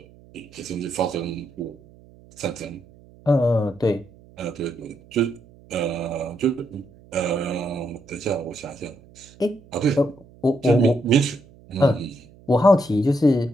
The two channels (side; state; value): right; noise; hum, 25 dB below the sound